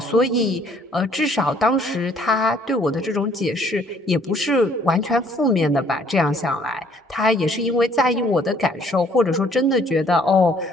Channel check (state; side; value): normal; both; correlation 0.61